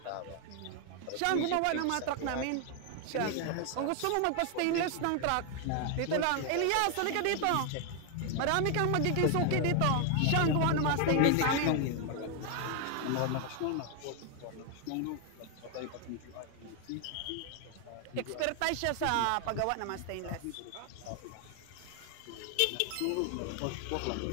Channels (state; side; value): different; both; correlation 0.00